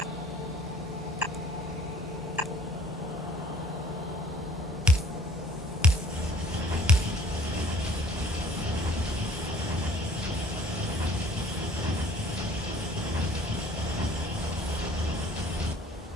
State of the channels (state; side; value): normal; both; correlation 0.54